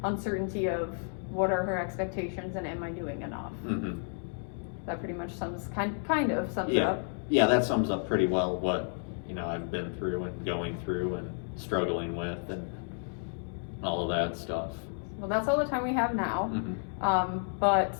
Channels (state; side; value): silent; right; 57 dB below the other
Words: uncertainty of what are her expectations and am I doing enough? Mm-hmm. That pretty much kind of sums it Yeah. up. Yeah, that sums up pretty well what, you know, I've been through and going through and struggling with and all of that stuff. Well, that's all the time we have now. Mm-hmm. But